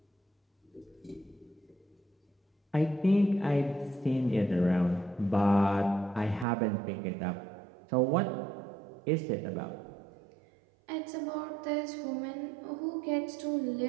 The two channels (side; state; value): left; drops out; at 6.5 s